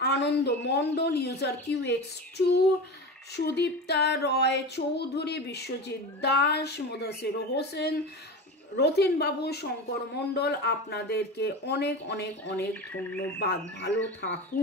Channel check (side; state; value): both; normal; correlation 0.27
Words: আনন্দ মণ্ডল, ইউজার QX2, সুদীপ্তা রয় চৌধুরী, বিশ্বজিৎ দাস, মুদাসির হোসেন, রতিন বাবু, শঙ্কর মণ্ডল, আপনাদেরকে অনেক অনেক অনেক ধন্যবাদ। ভালো